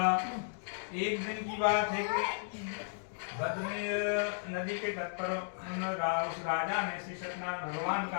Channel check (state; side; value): silent; right; digital silence